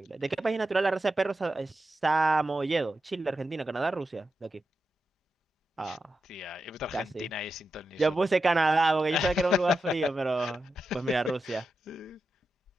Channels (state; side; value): normal; both; correlation 0.89